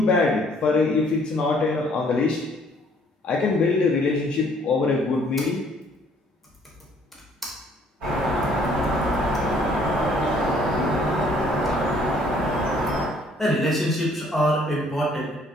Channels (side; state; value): both; normal; correlation 0.61